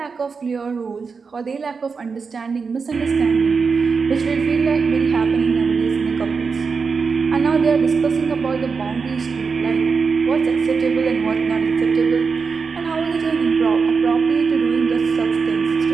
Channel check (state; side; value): quieter; left; 5.1 dB